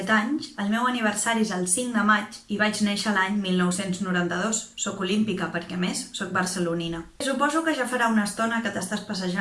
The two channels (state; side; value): identical; both; correlation 1.00